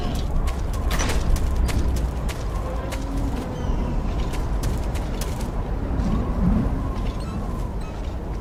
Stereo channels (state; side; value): identical; both; correlation 1.00